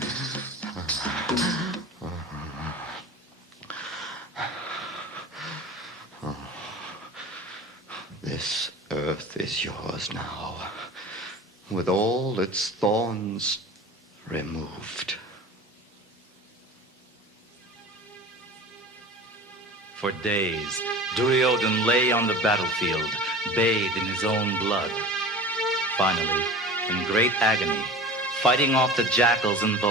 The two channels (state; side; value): normal; both; correlation 0.36